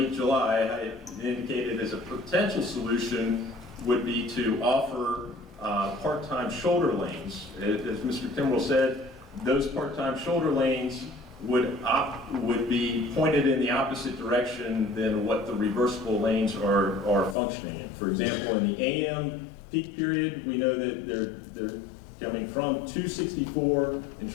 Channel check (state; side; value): drops out; right; at 17.4 s